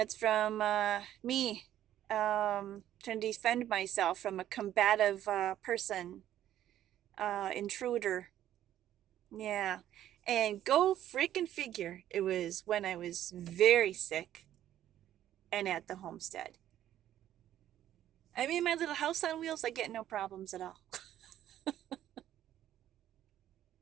from me trying to defend myself from a combative person, intruder. Yeah. And go freaking figure. It was when I was very sick and at the homestead. I mean, my little house on wheels, I get no problems at all.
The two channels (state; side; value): quieter; left; 11.9 dB